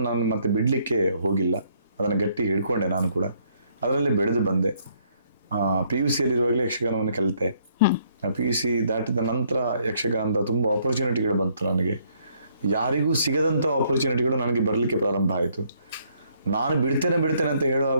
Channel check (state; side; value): inverted; both; correlation -0.68